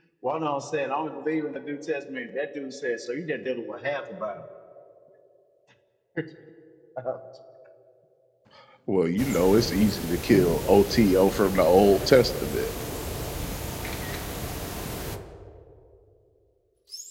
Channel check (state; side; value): identical; both; correlation 1.00